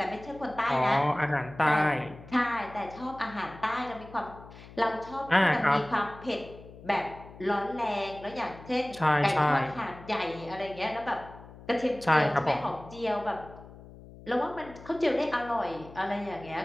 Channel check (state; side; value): noise; left; hum, 18 dB below the sound